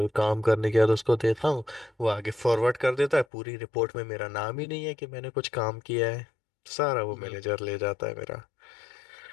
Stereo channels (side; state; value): right; drops out; at 3.2 s